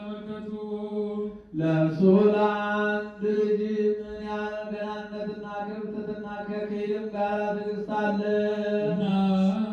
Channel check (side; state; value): both; identical; correlation 1.00